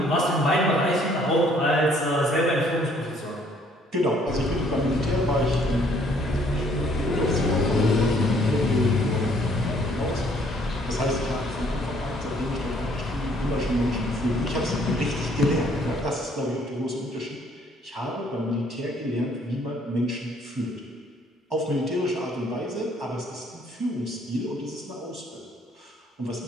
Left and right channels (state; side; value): normal; both; correlation 0.63